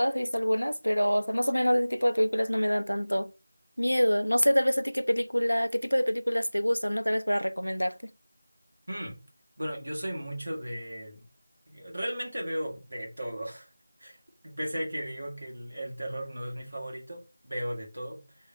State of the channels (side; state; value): both; inverted; correlation -0.99